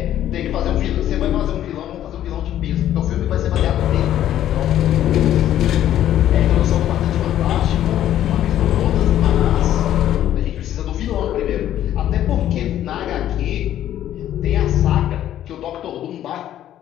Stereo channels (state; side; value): quieter; right; 11.8 dB